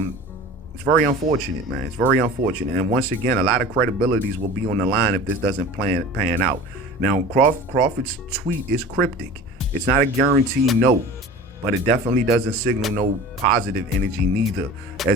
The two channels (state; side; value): normal; both; correlation 0.39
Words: It's very unfortunate, man. It's very unfortunate. And once again, a lot of credibilities will be on the line if this doesn't pan out. Now, Crawford's tweet is cryptic. It's not a guarantee no, but it definitely doesn't signal no positive energy neither,